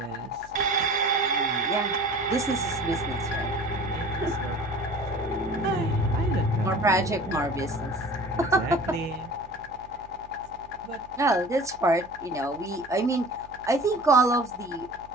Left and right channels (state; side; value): noise; right; hum, 23 dB below the sound